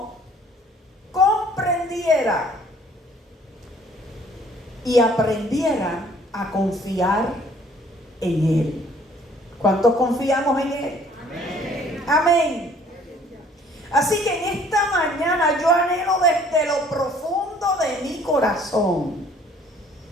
comprendiera y aprendiera a confiar en Él. ¿Cuántos confiamos en Él? Amén. Amén. Así que en esta mañana yo anhelo desde lo profundo de mi corazón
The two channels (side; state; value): both; normal; correlation 0.57